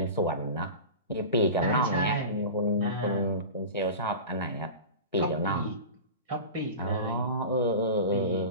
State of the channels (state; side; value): inverted; both; correlation -0.31